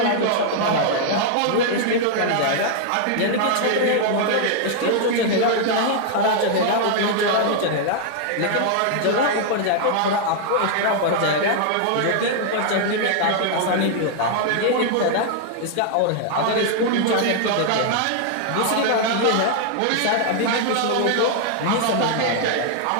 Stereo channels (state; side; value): different; both; correlation 0.00